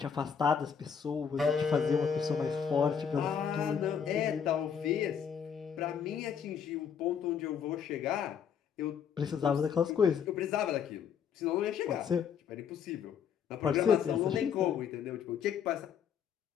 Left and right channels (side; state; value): right; quieter; 7.4 dB